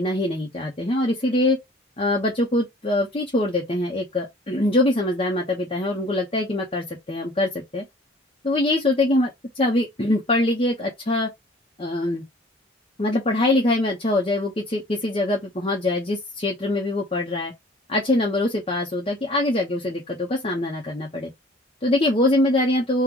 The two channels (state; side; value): normal; both; correlation 0.50